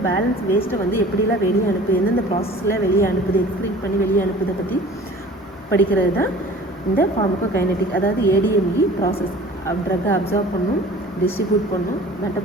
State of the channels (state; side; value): normal; both; correlation 0.45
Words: பேலன்ஸ் வேஸ்ட்டை வந்து எப்படிலாம் வெளியே அனுப்புது, எந்தெந்த ப்ராசஸில் வெளியே அனுப்புது, எக்ஸ்க்ரீட் பண்ணி வெளியே அனுப்புதை பற்றி படிக்கிறது தான் இந்த ஃபார்மகோகைனெட்டிக். அதாவது ஏடிஎம்இ ப்ராசஸ். ட்ரக்கை அப்சர்வ் பண்ணும், டிஸ்ட்ரிபியூட் பண்ணும்,